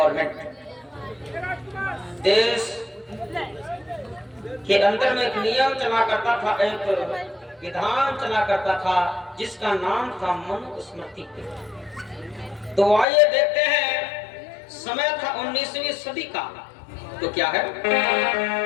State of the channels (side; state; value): right; drops out; at 13.1 s